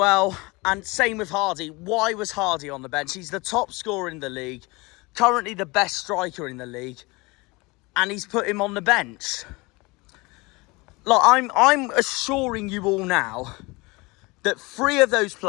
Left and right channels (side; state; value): right; quieter; 24.7 dB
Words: And same with Hardie. Why was Hardie on the bench? He's the top scorer in the league. Currently the best striker in the league. And he's put him on the bench. Look, I'm assuring you all now that 3 of those